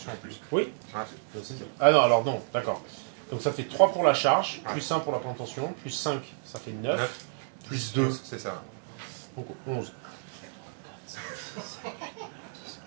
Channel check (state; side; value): silent; left; digital silence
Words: en plus. Oui. Ouais. Ah non, alors non, d'accord. Donc ça fait 3 pour la charge, Ouais. plus 1 pour la plantation, plus 5, ça fait 9, 9, plus 2, c'est ça. donc 11.